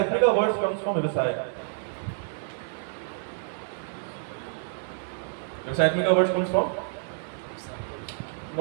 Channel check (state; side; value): silent; left; digital silence